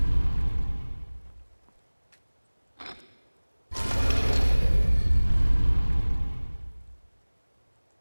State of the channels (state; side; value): inverted; both; correlation -1.00